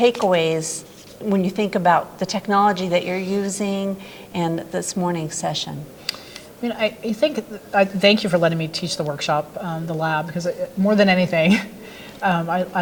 when you think about the technology that you're using and this morning's session. I mean, I thank you for letting me teach the workshop, the lab, because more than anything,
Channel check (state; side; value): identical; both; correlation 1.00